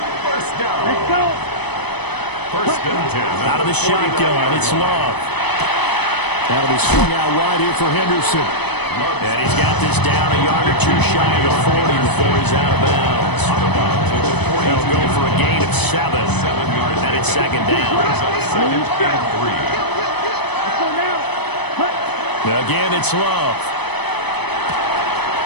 go. First and 10. Out of the shotgun, it's Love. That'll be swung out wide here for Henderson. And he's got this down a yard or two shy of the 40 before he's out of bounds. They'll go for a gain of 7. And it's second down. Second and 3. Again, it's Love.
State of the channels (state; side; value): late; right; 0.99 ms